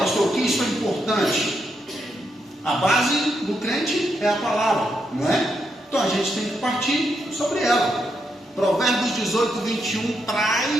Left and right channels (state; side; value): normal; both; correlation 0.81